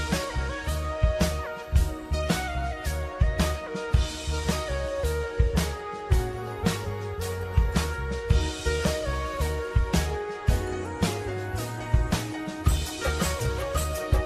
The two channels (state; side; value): identical; both; correlation 1.00